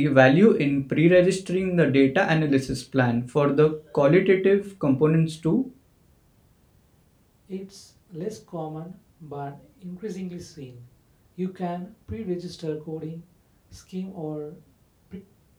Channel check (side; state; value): both; identical; correlation 1.00